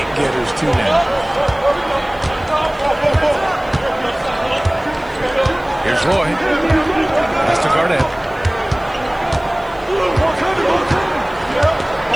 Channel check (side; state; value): left; noise; hiss, 29 dB below the sound